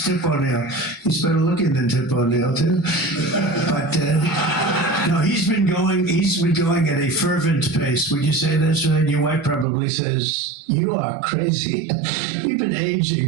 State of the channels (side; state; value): left; drops out; at 9.7 s